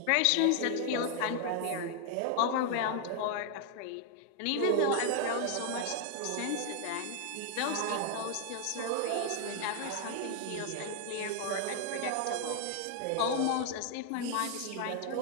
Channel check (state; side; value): different; both; correlation 0.00